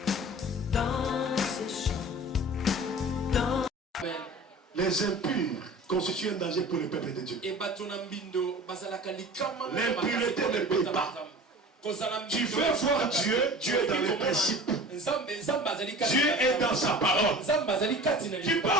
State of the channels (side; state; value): both; normal; correlation 0.40